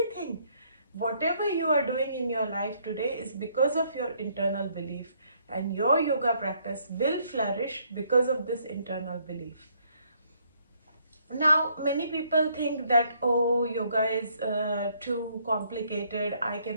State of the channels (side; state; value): both; inverted; correlation -0.68